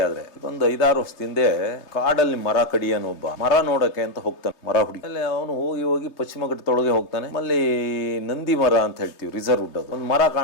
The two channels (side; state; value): right; late; 3.2 ms